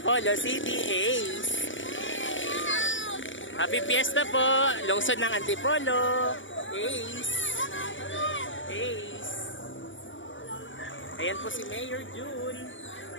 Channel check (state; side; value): late; right; 0.56 ms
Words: City, Ace. Happy fiesta po, lungsod ng Antipolo, Ace. Ace. Ayan po si Mayor June,